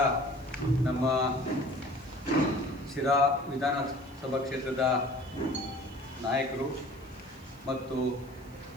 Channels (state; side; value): noise; right; hiss, 28 dB below the sound